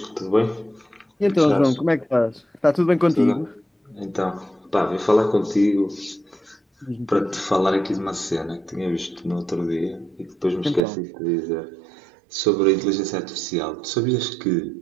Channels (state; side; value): drops out; left; at 10.8 s